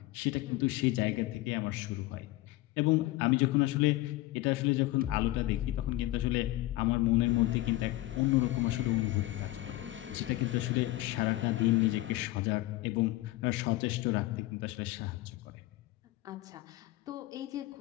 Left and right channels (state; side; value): quieter; right; 17.7 dB